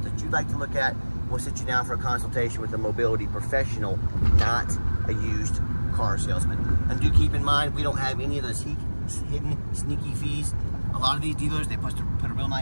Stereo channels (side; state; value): both; inverted; correlation -1.00